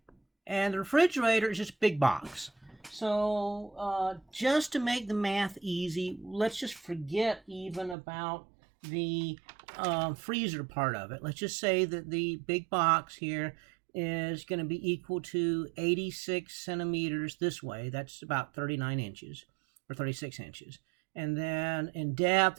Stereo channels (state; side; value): drops out; left; at 8.0 s